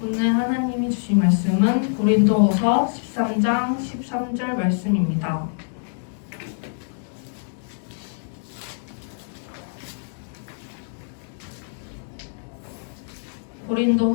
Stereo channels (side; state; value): right; silent; digital silence